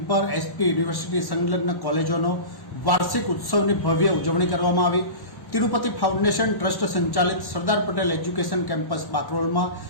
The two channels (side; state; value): right; late; 1.1 ms